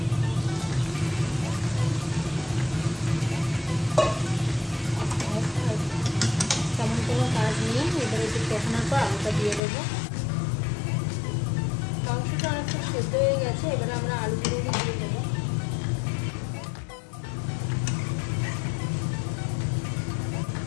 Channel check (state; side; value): drops out; right; at 9.6 s